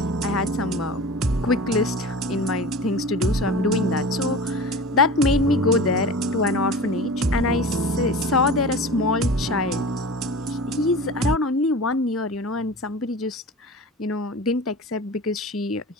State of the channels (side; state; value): both; normal; correlation 0.35